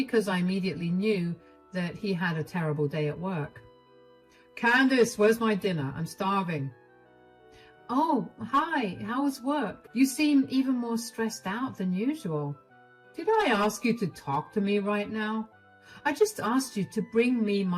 I immediately knew that he had a terrible day at work. "Candace, where's my dinner? I'm starving." "Oh, hi, how was work? You seem even more stressed out than usual." "Did I ask you to talk to me right now? I just asked you to bring me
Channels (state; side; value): identical; both; correlation 1.00